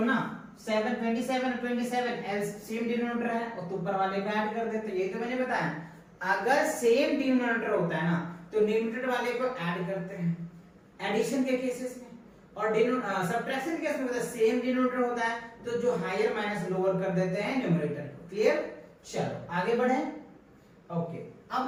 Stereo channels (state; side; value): identical; both; correlation 1.00